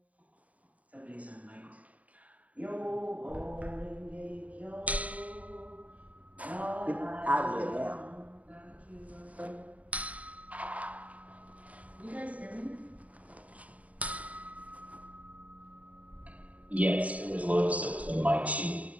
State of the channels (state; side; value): late; left; 0.069 ms